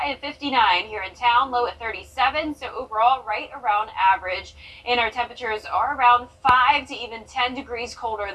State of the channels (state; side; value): identical; both; correlation 1.00